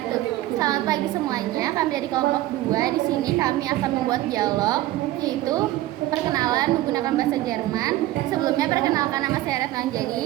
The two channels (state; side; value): quieter; left; 15.8 dB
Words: Selamat pagi semuanya. Kami dari kelompok 2. Di sini kami akan membuat dialog, yaitu perkenalan menggunakan bahasa Jerman. Sebelumnya perkenalkan, nama saya Retno